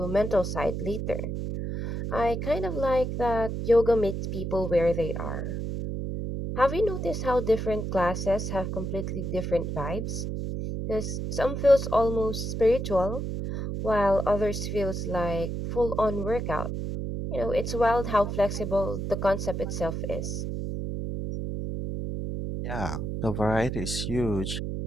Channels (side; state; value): right; noise; hum, 3 dB below the sound